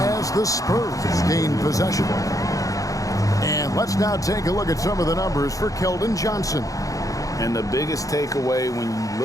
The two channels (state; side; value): late; right; 0.17 ms